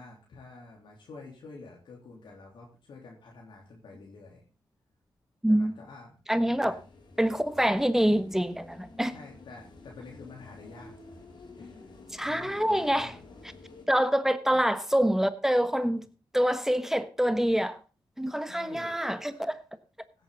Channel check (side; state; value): both; normal; correlation 0.98